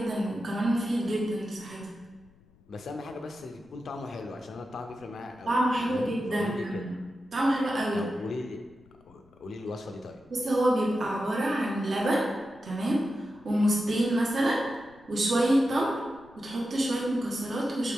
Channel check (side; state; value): left; noise; rumble, 28 dB below the sound